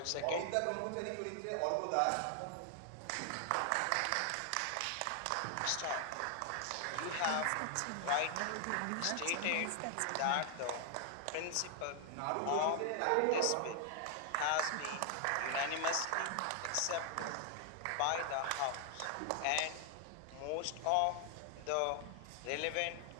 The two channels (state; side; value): different; both; correlation 0.00